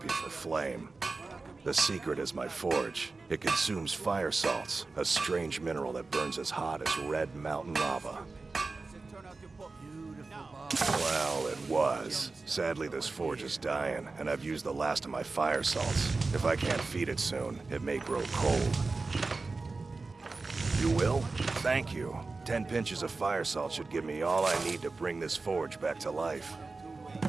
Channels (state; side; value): quieter; left; 3.8 dB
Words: for flame. The secret is my forge. It consumes fire salts, a strange mineral that burns as hot as red mountain lava. Well, it was. Sadly, this forge is dying, and I've used the last of my fire salts. If I can't feed it soon, it may grow cold. You will? Thank you. 10 pinches of fire salt should give me all I need to bring this forge back to life.